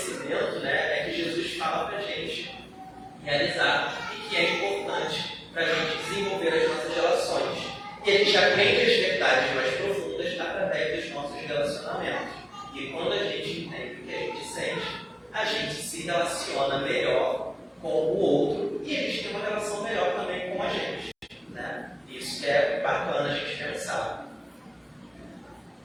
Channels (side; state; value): both; identical; correlation 1.00